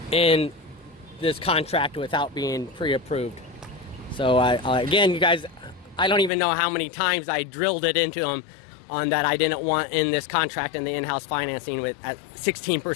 in this contract without being pre-approved. So again, you guys, I don't even know how many times I drilled it into them on that I didn't want in this contract and the in-house financing at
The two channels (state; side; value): drops out; right; at 6.3 s